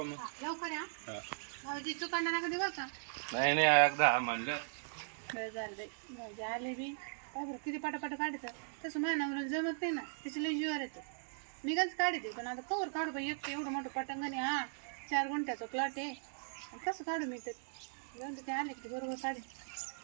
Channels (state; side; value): silent; left; digital silence